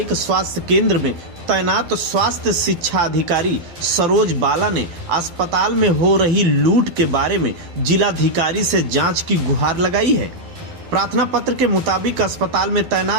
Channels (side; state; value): left; late; 12 ms